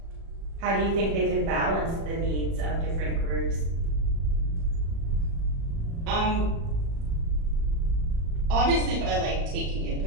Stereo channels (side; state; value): left; late; 36 ms